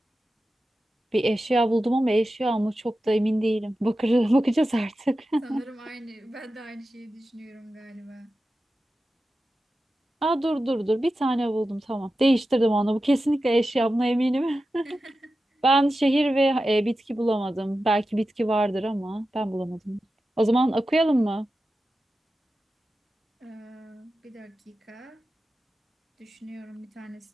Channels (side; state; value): both; normal; correlation 0.93